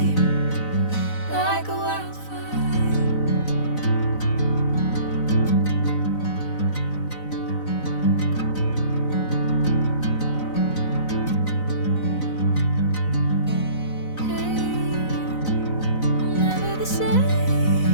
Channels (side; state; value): right; late; 4.0 ms